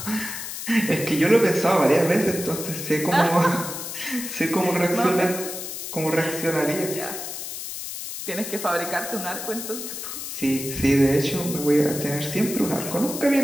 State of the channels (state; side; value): noise; left; hiss, 7 dB below the sound